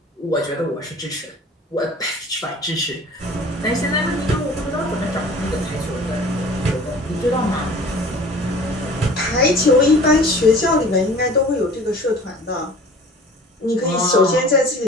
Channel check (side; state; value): both; normal; correlation 0.45